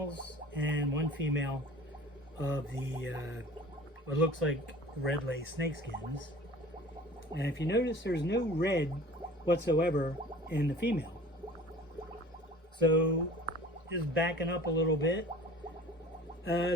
and 1 female of the, what looks like Ridley snakeskins. And if you notice, there's no red whatsoever in the female. So, just backing up a little bit.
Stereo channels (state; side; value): normal; both; correlation 0.44